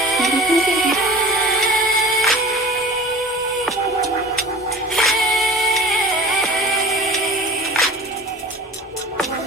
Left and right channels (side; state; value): both; normal; correlation 0.40